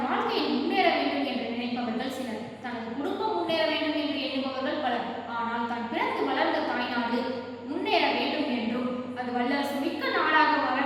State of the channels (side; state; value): both; identical; correlation 1.00